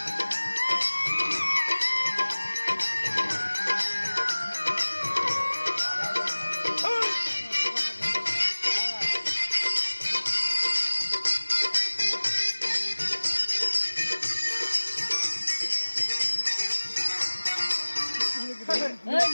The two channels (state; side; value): inverted; both; correlation -1.00